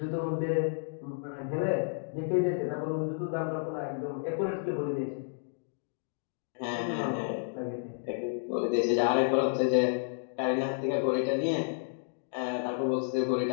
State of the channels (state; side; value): silent; right; digital silence